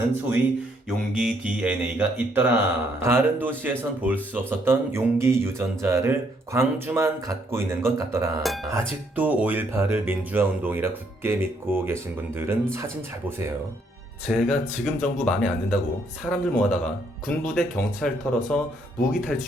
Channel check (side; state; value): both; normal; correlation 0.70